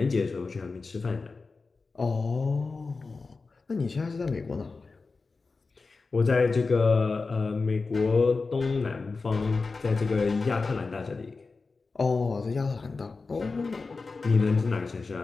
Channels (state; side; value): quieter; right; 4.1 dB